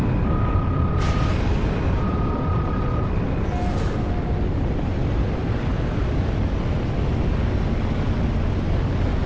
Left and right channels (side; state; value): both; identical; correlation 1.00